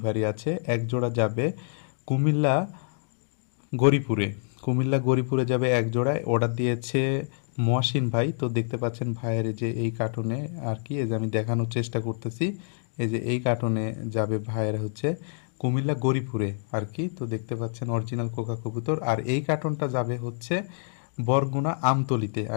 আছে। এক জোড়া যাবে কুমিল্লা গরিপুরে। কুমিল্লা গরিপুরে যাবে এক জোড়ায়। অর্ডার দিয়েছে মহসিন ভাই। তো দেখতে পাচ্ছেন ভাইয়ের এই যে এই কার্টুনে আর কি, এই যে আমি দেখানোর চেষ্টা করতেছি। এই যে এই কার্টুনে যাবে ভাইয়ের হচ্ছে কুমিল্লা গরিপুরে আর কি। তো দেখতে পাচ্ছেন অরিজিনাল কোকা কবুতর। আর এই কার্টুনটা যাবে হচ্ছে বরগুনা আমতলিতে।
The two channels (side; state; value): right; silent; digital silence